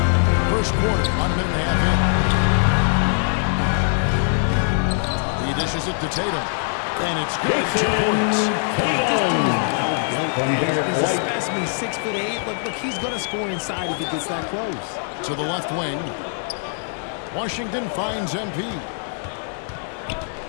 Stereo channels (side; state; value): right; silent; 62 dB below the other